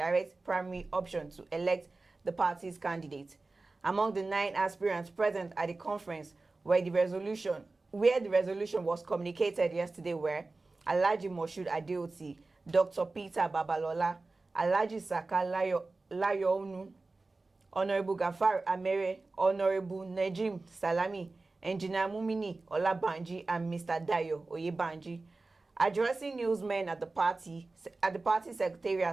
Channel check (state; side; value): quieter; left; 3.4 dB